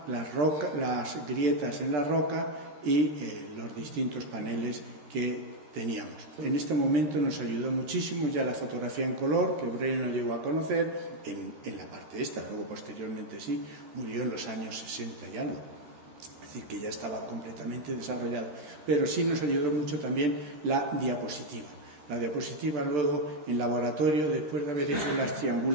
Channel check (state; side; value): late; left; 13 ms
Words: las grietas en la roca y los distintos paneles que teníamos. En este momento nos ayudó muchísimo ya la fotografía en color, que Breuil no llegó a conocer en la parte esta, luego posteriormente sí, murió en los años 60 y algo, es decir, que ya estaba completamente desarrollado, pero sí nos ayudó mucho también la diapositiva. La diapositiva luego en laboratorio, después de haber hecho las